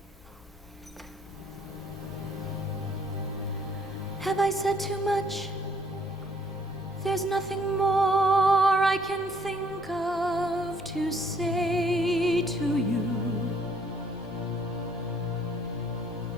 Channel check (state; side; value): normal; both; correlation 0.64